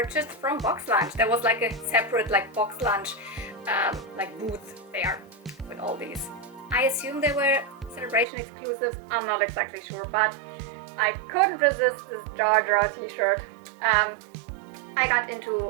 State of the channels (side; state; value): left; drops out; at 8.2 s